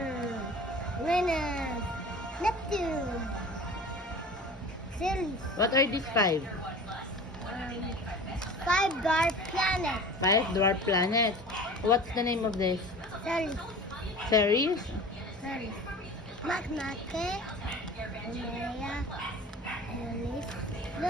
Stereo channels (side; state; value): both; normal; correlation 0.39